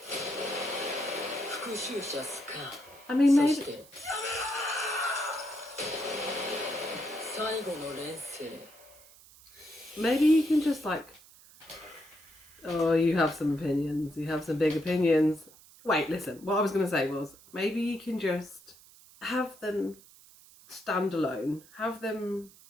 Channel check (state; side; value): noise; right; hiss, 23 dB below the sound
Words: 復讐者スカー。I mean, そ maybe して最後の錬成。maybe you can just like. Oh, you have some opinions. You have some big opinions. Wait, listen. What I was going to say was maybe you can just have them stand alone. Have them